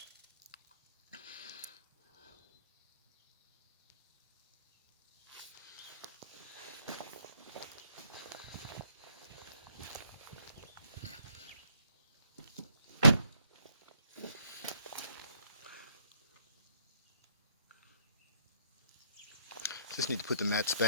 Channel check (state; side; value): inverted; both; correlation -0.68